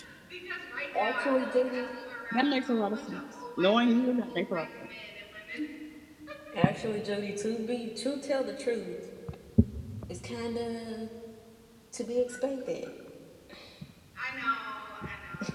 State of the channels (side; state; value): both; identical; correlation 1.00